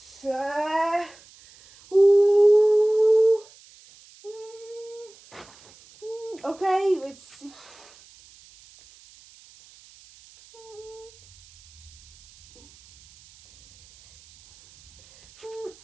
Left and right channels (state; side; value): noise; right; hiss, 25 dB below the sound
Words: Okay, let's see.